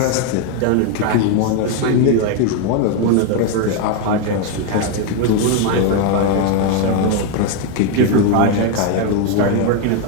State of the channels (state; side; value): different; both; correlation 0.01